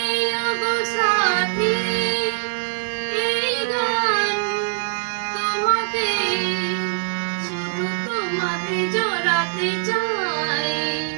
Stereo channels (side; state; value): left; silent; digital silence